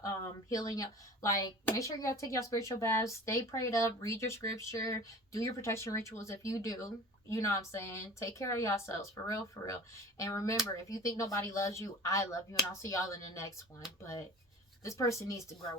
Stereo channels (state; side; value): normal; both; correlation 0.41